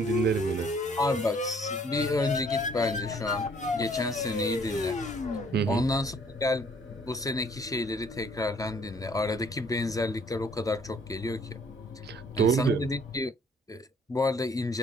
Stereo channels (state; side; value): normal; both; correlation 0.60